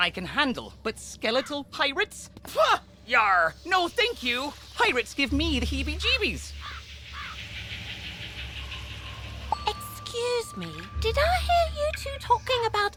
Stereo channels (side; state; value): both; identical; correlation 1.00